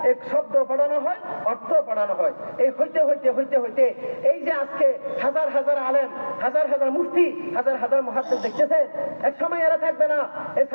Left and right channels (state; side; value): inverted; both; correlation -1.00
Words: এক শব্দ পড়ানো হয়, অর্থ পড়ানো হয়। এই হইতে হইতে হইতে হইতে এই যে আজকে হাজার হাজার আলেম, হাজার হাজার মুফতি, হাজার হাজার মুহাদ্দিস দেখতেছেন, এক সময় এরা থাকবে না। এই